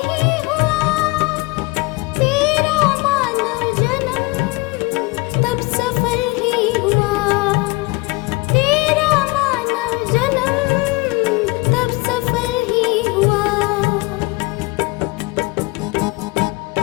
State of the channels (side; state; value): right; quieter; 24.0 dB